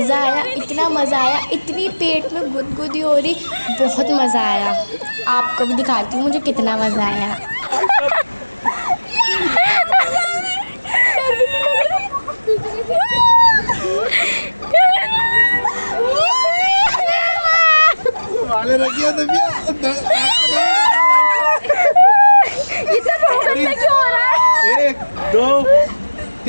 आया, इतनी पेट में गुदगुदी हो रही, बहुत मज़ा आया। आपको भी दिखाती हूँ मुझे कितना मज़ा आया। क्यों हो रहा है? 1 2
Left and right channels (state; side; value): inverted; both; correlation -1.00